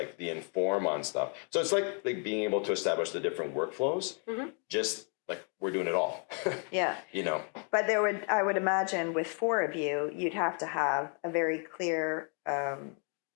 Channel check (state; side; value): quieter; right; 39.7 dB